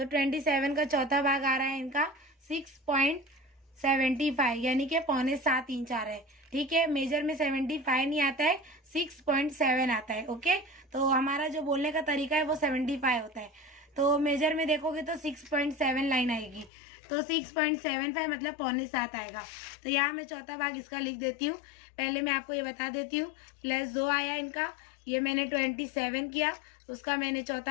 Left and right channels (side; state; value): right; drops out; at 16.7 s